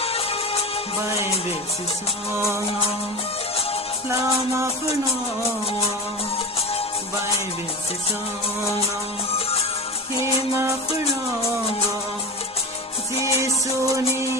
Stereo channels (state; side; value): normal; both; correlation 0.25